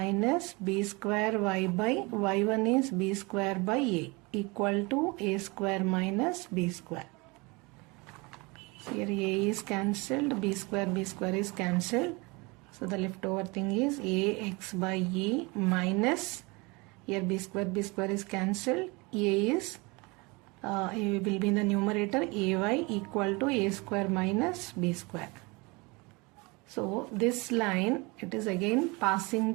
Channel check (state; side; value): quieter; left; 26.4 dB